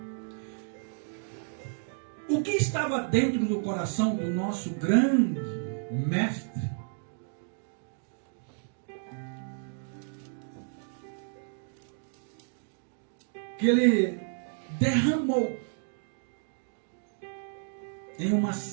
O que estava dentro do coração do nosso grande mestre? Que ele derramou em uma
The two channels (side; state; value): left; silent; 57 dB below the other